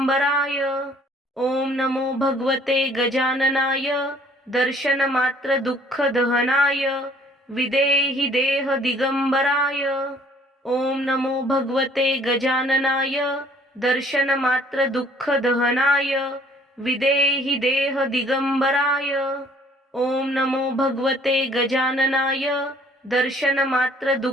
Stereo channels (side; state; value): both; normal; correlation 0.58